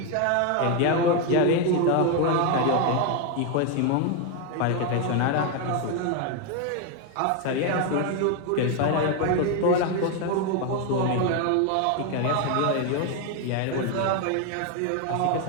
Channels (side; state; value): both; different; correlation 0.01